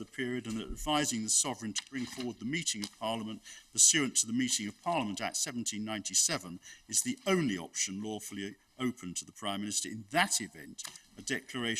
period, and that advising the Sovereign to bring forward the meeting of Parliament pursuant to the Meeting of Parliament Act 1797 is the only option lawfully open to the Prime Minister. In that event, a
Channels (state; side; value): identical; both; correlation 1.00